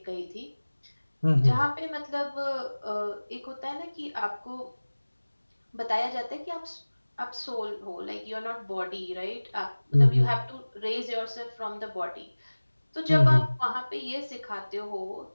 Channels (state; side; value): inverted; both; correlation -1.00